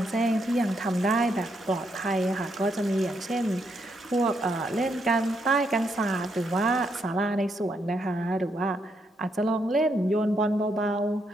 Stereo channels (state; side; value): normal; both; correlation 0.77